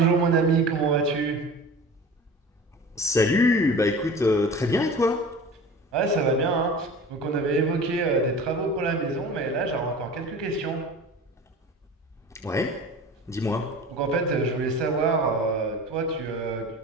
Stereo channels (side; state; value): both; normal; correlation 0.37